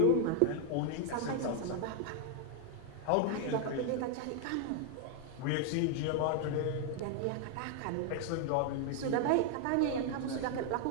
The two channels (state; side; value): different; both; correlation 0.00